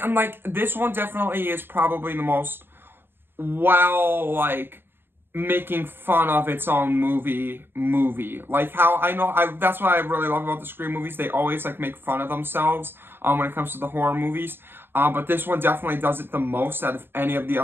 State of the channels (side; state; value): left; late; 0.10 ms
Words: like, this one definitely is probably the most, well, like, making fun of its own movie. Like, how that's what I really love about the Scream movies. They always like make fun of themselves when it comes to the horror movies. But this one definitely does it the most out of any of the